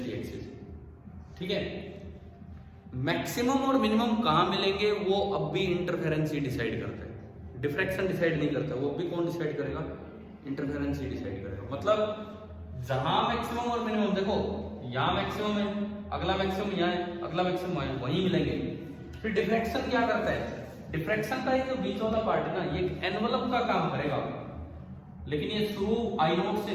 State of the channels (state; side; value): identical; both; correlation 1.00